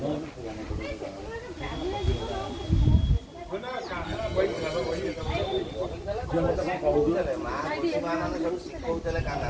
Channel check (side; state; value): both; identical; correlation 1.00